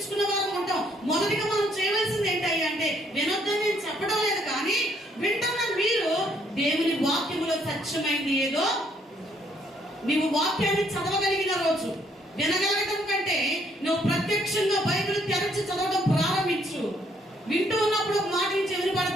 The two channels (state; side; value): normal; both; correlation 0.68